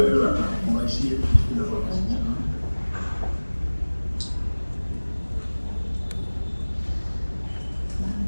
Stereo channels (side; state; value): both; inverted; correlation -1.00